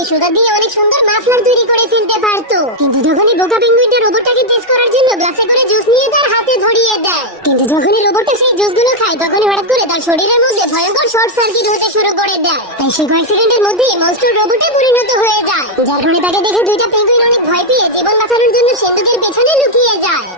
সুতা দিয়ে অনেক সুন্দর মাফলার তৈরি করে ফেলতে পারতো। কিন্তু যখনই বোকা পেঙ্গুইনটা রোবটটাকে টেস্ট করার জন্য গ্লাসে করে জুস নিয়ে তার হাতে ধরিয়ে দেয়, কিন্তু যখনই রোবটটা সেই জুসগুলো খায় তখনই হঠাৎ করে তার শরীরের মধ্যে ভয়ঙ্কর শর্ট সার্কিট হতে শুরু করে দেয়। তাই সে কয়েক সেকেন্ডের মধ্যেই মনস্টার রোবটে পরিণত হয়ে যায়, যার ফলে তাকে দেখে দুইটা পেঙ্গুইন অনেক ভয় পেয়ে জীবন বাঁচানোর জন্য সিন্দুকের পেছনে লুকিয়ে যায়।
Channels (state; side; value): normal; both; correlation 0.00